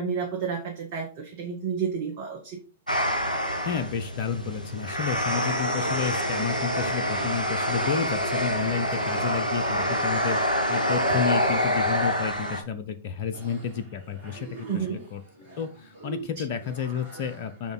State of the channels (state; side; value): inverted; both; correlation -0.39